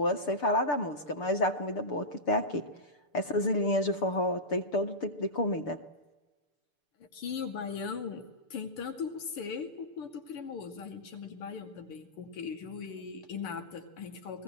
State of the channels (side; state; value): right; late; 6.8 ms